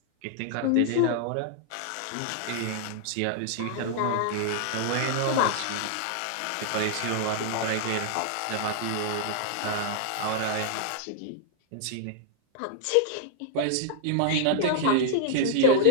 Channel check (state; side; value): different; both; correlation -0.01